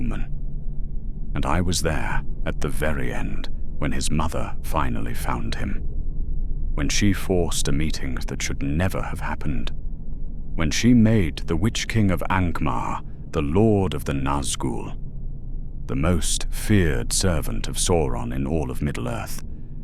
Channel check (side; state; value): both; identical; correlation 1.00